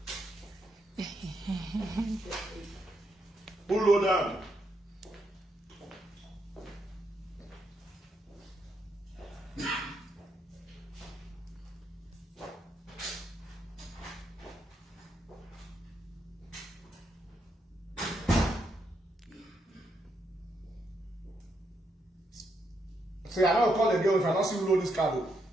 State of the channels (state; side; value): normal; both; correlation 0.79